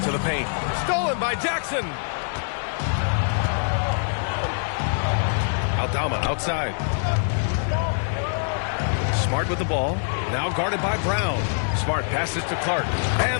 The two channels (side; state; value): right; silent; digital silence